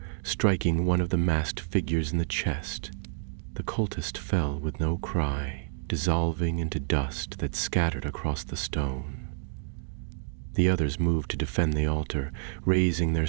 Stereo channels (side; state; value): left; silent; digital silence